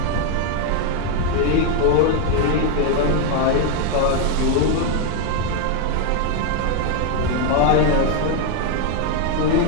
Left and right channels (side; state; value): both; different; correlation 0.01